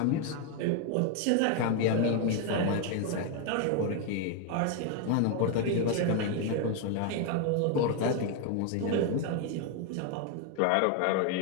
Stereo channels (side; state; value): both; different; correlation 0.01